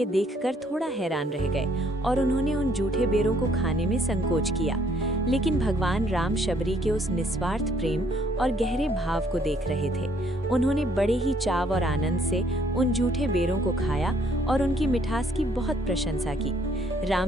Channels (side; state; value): both; normal; correlation 0.65